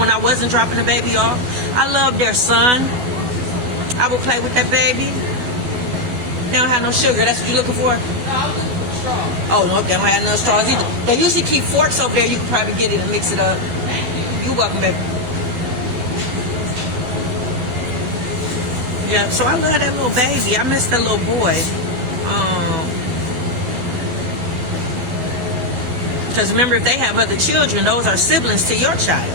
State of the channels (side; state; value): left; late; 11 ms